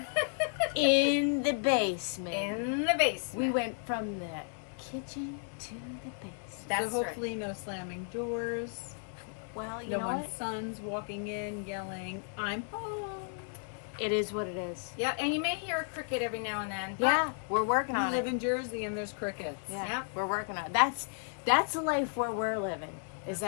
In the basement. In the We basement. went from the kitchen to the basement. That's so hopefully no slamming doors. Well, you No know one's what? sons walking in yelling, I'm home. It is what it is. Yeah, and you may hear a cricket every now and then. But Yeah, we're working We on live it. in Jersey and there's crickets. Yeah, we're working on it. That's a life where we're living. Is That's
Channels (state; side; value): silent; right; 55 dB below the other